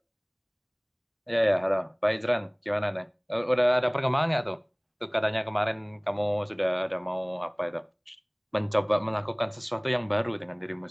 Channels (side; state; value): both; identical; correlation 1.00